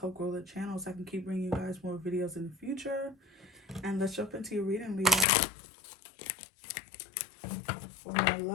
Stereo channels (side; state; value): right; drops out; at 5.2 s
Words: grow the channel so I can keep bringing you guys more videos in the future. And let's jump into your reading, Leo. For my